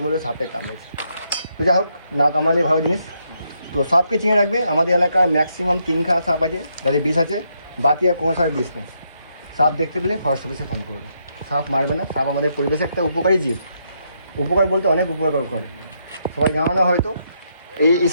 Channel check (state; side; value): inverted; both; correlation -0.77